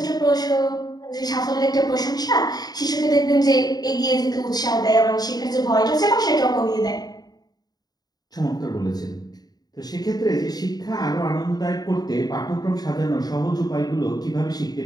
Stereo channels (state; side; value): late; right; 0.19 ms